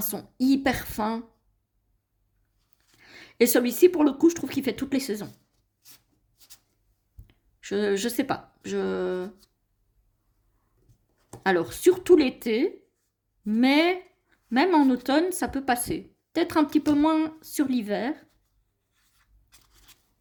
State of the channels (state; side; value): identical; both; correlation 1.00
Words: hyper fins. Et celui-ci, pour le coup, je trouve qu'il fait toutes les saisons. Je sais pas. Alors, surtout l'été, mais même en automne, ça peut passer. Peut-être un petit peu moins sur l'hiver.